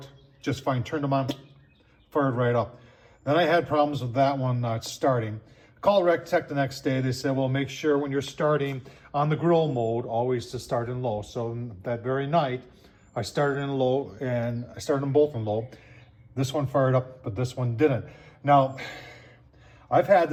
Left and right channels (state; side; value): identical; both; correlation 1.00